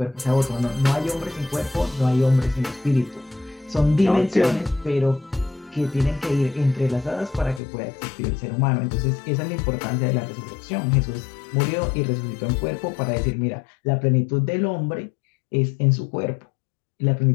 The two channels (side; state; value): right; drops out; at 7.6 s